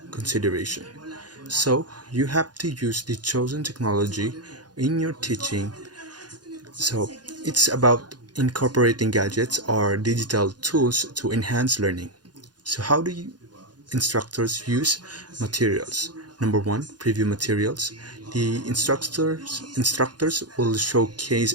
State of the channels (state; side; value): late; left; 0.69 ms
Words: consideration. So you have to use the chosen technology in your teaching. So it's about incorporating gadgets or digital tools to enhance learning. So how do instructors use materials? Number one, preview materials. The instructors will showcase